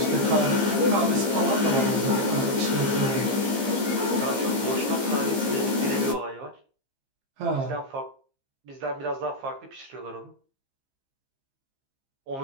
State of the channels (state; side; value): late; left; 15 ms